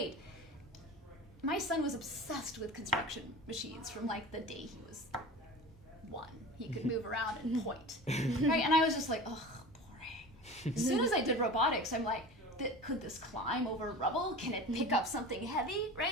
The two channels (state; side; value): normal; both; correlation 0.35